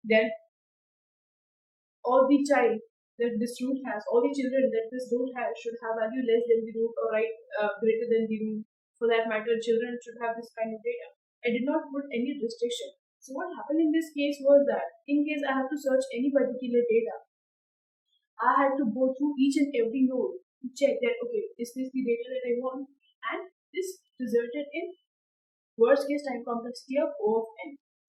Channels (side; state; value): both; identical; correlation 1.00